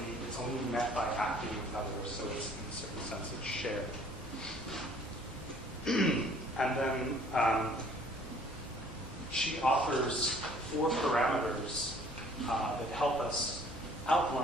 it's only met by acting with others, so it's, in a certain sense, it's shared. And then she offers 4 parameters that help us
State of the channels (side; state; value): both; normal; correlation 0.56